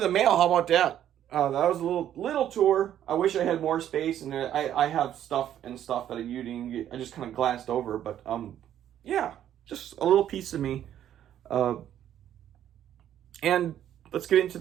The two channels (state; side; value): quieter; left; 10.9 dB